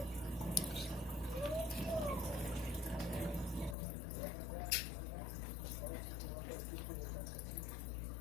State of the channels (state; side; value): drops out; right; at 3.8 s